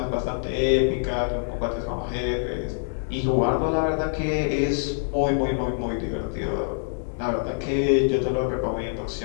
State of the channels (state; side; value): silent; right; digital silence